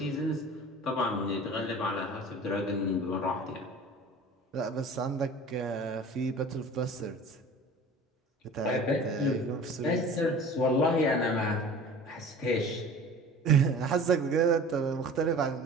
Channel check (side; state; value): both; normal; correlation 0.42